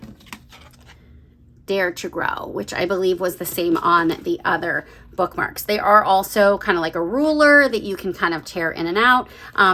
Dare to Grow, which I believe was the same on the other bookmarks. They are also kind of like a ruler that you can kind of tear in and out.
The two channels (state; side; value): identical; both; correlation 1.00